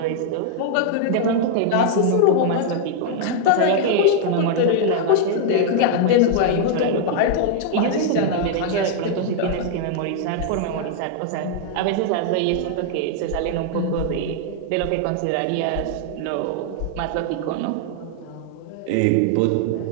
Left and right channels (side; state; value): both; different; correlation -0.01